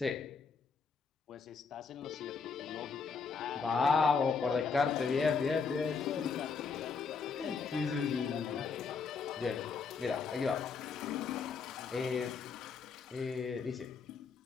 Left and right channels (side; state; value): right; quieter; 5.3 dB